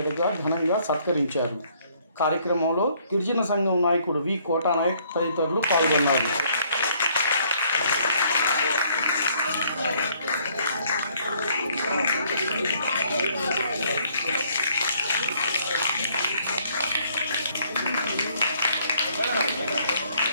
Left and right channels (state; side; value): inverted; both; correlation -0.64